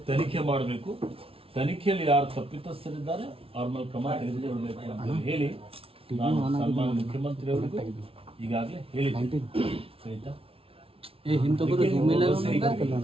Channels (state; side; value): late; left; 0.27 ms